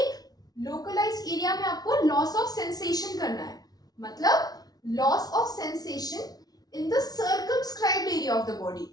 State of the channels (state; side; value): late; right; 0.19 ms